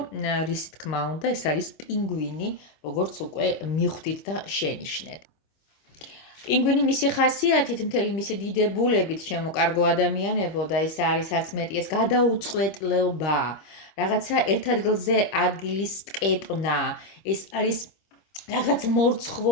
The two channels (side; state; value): right; late; 26 ms